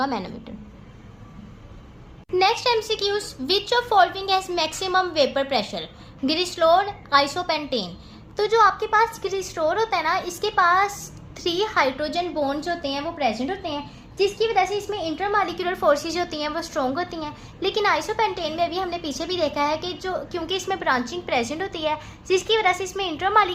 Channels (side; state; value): both; identical; correlation 1.00